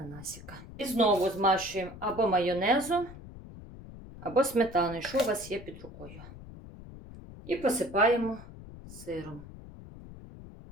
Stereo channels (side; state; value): left; noise; rumble, 16 dB below the sound